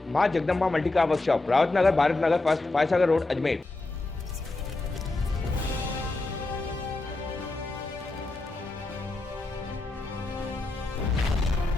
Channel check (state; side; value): quieter; right; 3.1 dB